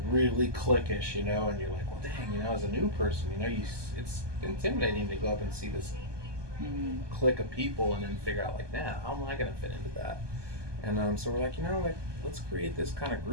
really cliquish, you know, and you're like, well, dang, you know, as a new person, you know, it's intimidating to go up and see this clique of people and then figure out like, nah, how am I gonna fit into that? And so we're like, you know, like let's create this kind of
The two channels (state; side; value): late; left; 1.2 ms